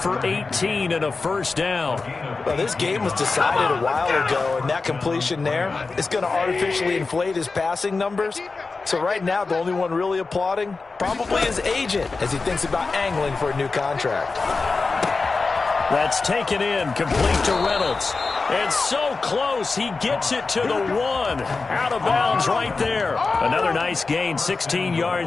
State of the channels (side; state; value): right; quieter; 4.1 dB